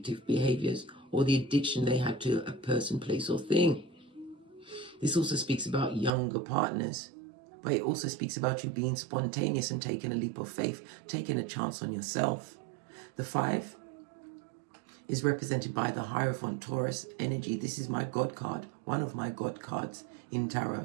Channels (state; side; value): drops out; left; at 6.1 s